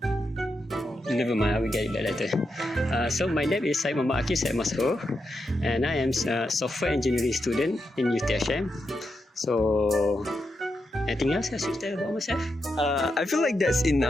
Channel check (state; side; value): normal; both; correlation 0.85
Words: Never mind, I will get it back later. So my name is Syed Muhammad Akif, Syed Masrur, and I am a software engineering student in UTHM. So anything else I should tell about myself? I feel like that's